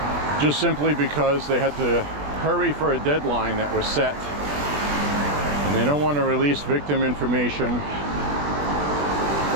just simply because they had to hurry for a deadline that was set, and they don't want to release victim information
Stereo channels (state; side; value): late; left; 20 ms